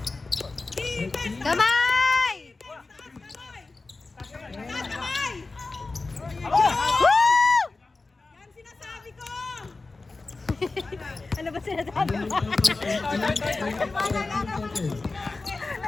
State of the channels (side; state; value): right; quieter; 3.6 dB